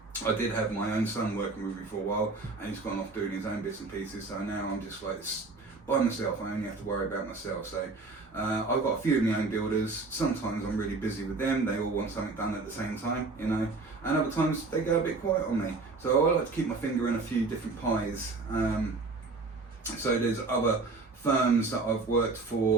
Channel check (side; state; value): left; quieter; 3.7 dB